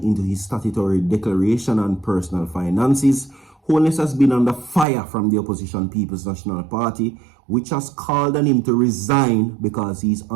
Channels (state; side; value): drops out; left; at 4.9 s